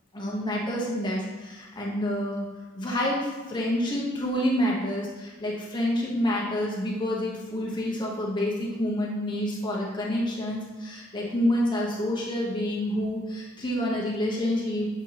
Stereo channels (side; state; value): both; normal; correlation 0.68